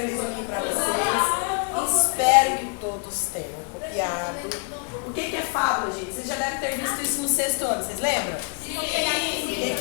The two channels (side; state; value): right; quieter; 38.8 dB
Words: resuminho para vocês. Espero que todos tenham copiado. O que é fábula, gente? Vocês já devem ter visto isso no 6º ano, vocês lembram? Sim. O